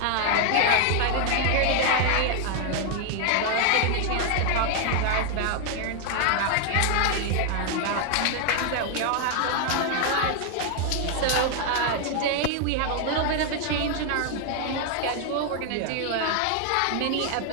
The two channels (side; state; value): both; different; correlation 0.00